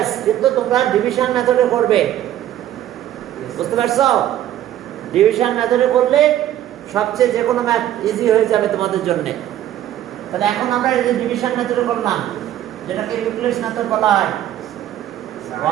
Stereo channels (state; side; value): quieter; left; 12.2 dB